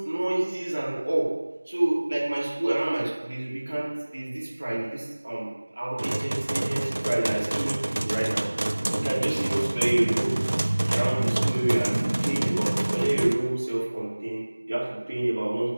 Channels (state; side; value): inverted; both; correlation -1.00